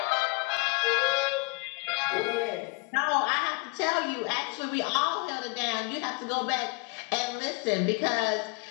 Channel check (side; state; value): right; quieter; 28.9 dB